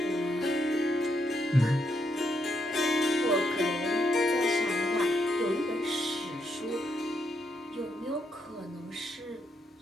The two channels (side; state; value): both; normal; correlation 0.78